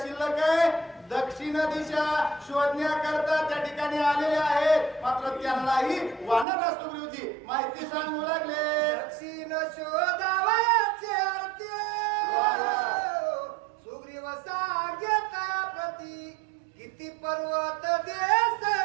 शिल्लक आहे? दक्षिण दिशा शोधण्याकरता त्या ठिकाणी आलेले आहेत. मात्र त्यांनाही वानर सुग्रीवजी माहिती सांगू लागले. दक्षिण शोधावयाचे अर्थ सुग्रीव सांगेत प्रती. किती पर्वत देश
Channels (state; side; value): drops out; left; at 6.5 s